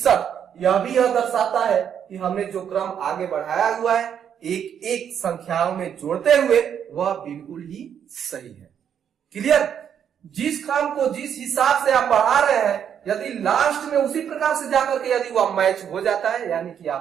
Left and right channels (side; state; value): left; quieter; 8.6 dB